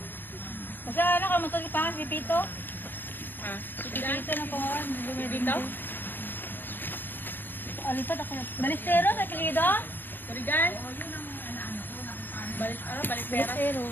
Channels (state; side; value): late; right; 0.095 ms